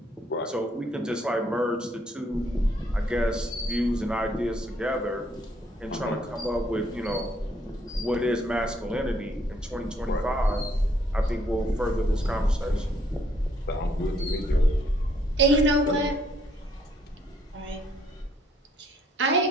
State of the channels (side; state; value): both; normal; correlation 0.68